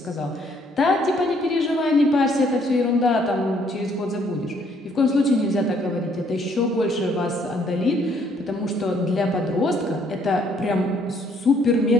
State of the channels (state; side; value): normal; both; correlation 0.66